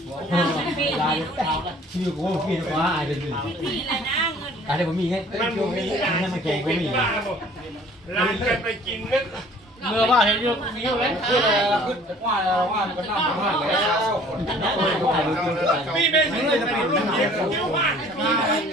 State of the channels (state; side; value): normal; both; correlation 0.52